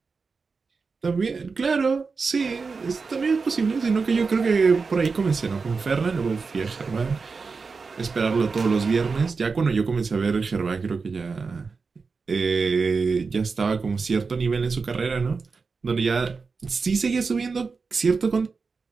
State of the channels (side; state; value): left; quieter; 4.7 dB